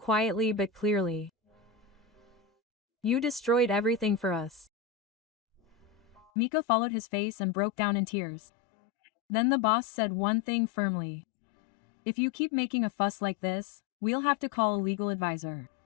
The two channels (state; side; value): drops out; right; at 6.2 s